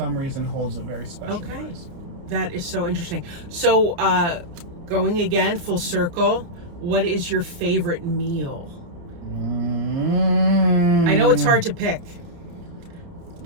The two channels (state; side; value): late; left; 29 ms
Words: reason, holds a very special place. That is so interesting. So, going again, full circle, what is your favorite meal? I know it's hard to pick.